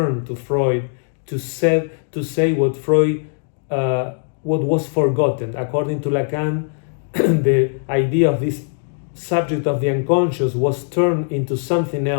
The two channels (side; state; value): right; silent; digital silence